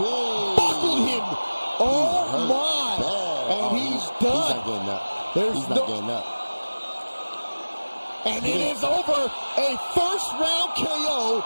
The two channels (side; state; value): both; inverted; correlation -1.00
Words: Buckled him. Oh, my. And he's done. He's not getting up. He's not getting up. And it is over. A first-round KO